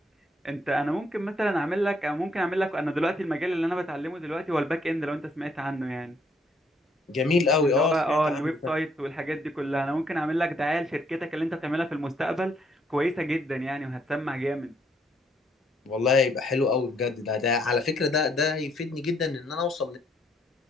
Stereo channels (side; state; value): both; normal; correlation 0.69